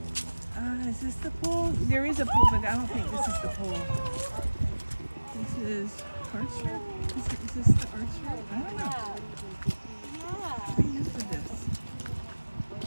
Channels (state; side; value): inverted; both; correlation -1.00